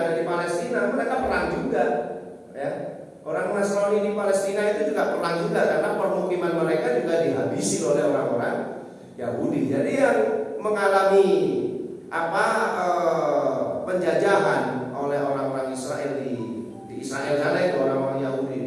di Palestina, mereka perang juga. Ya, orang Nasrani di Palestina itu juga perang juga karena permukiman mereka juga dihabisi oleh orang-orang Yahudi. Jadi yang mengalami penjajahan oleh orang-orang Israel di Israel sana, itu orang-orang Yahudi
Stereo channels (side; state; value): both; identical; correlation 1.00